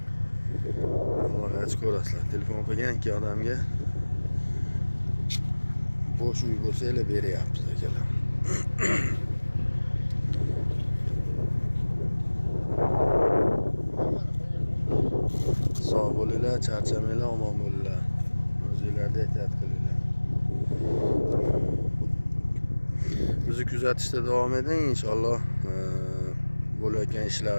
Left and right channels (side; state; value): both; inverted; correlation -1.00